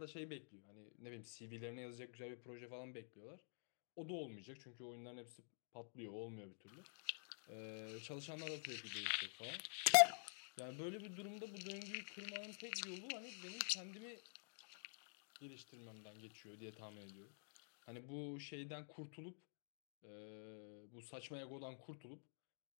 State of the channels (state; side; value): silent; right; digital silence